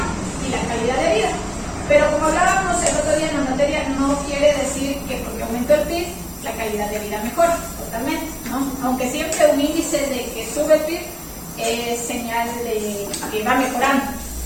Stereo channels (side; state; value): both; identical; correlation 1.00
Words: y la calidad de vida. Pero como hablábamos el otro día en la materia, no quiere decir que porque aumentó el PIB, la calidad de vida mejora totalmente, ¿no? Aunque siempre un índice de que sube el PIB es señal de que va mejorando,